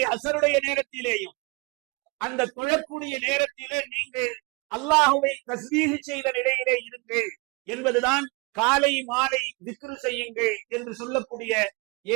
அசருடைய நேரத்திலேயும் அந்த தொழக்கூடிய நேரத்திலே நீங்கள் அல்லாஹ்வை தஸ்பீஹ் செய்த நிலையிலே இருங்கள் என்பதுதான் காலை மாலை திக்ர் செய்யுங்கள் என்று சொல்லக்கூடிய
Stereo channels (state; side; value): quieter; left; 28.3 dB